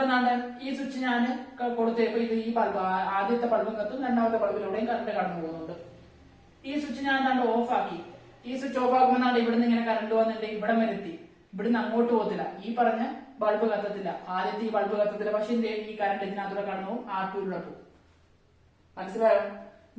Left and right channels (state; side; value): identical; both; correlation 1.00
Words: ഈ സ്വിച്ച് ഞാൻ കൊടുത്തപ്പോ ഇത് ഈ ബൾബ് ആദ്യത്തെ ബൾബും കത്തും, രണ്ടാമത്തെ ബൾബിലൂടെയും കറണ്ട് കടന്നു പോകുന്നുണ്ട്. ഈ സ്വിച്ച് ഞാൻ ഓഫ് ആക്കി. ഈ സ്വിച്ച് ഓഫ് ആക്കുമ്പോൾ ഇവിടുന്ന് ഇങ്ങനെ കറണ്ട് വന്നിട്ട് ഇവിടെ വരെ എത്തി. ഇവിടുന്ന് അങ്ങോട്ട് പോകത്തില്ല, ഈ പറഞ്ഞ ബൾബ് കത്തത്തില്ല, ആദ്യത്തെ ഈ ബൾബ് കത്തത്തില്ല. പക്ഷെ ഈ കറണ്ട് ഇതിനകത്തൂടെ കടന്നു പോകും, R2 പോകും. മനസ്സിലായോ?